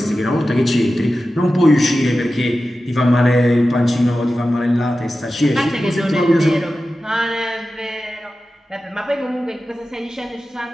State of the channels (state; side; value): normal; both; correlation 0.93